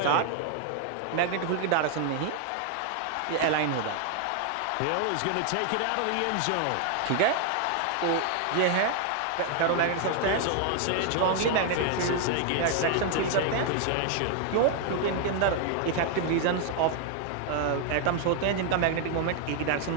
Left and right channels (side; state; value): both; different; correlation 0.00